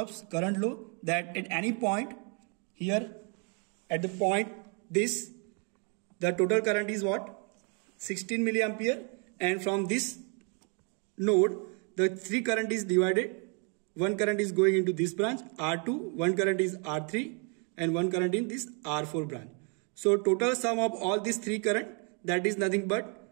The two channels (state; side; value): quieter; left; 37.8 dB